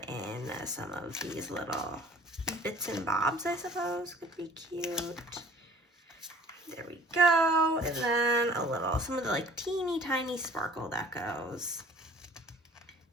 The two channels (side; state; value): both; normal; correlation 0.51